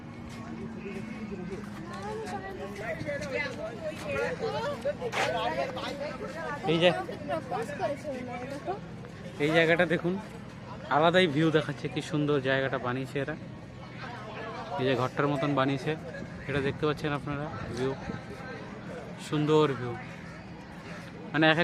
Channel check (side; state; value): both; identical; correlation 1.00